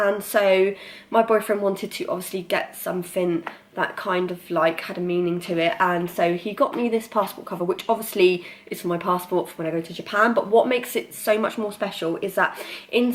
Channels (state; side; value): identical; both; correlation 1.00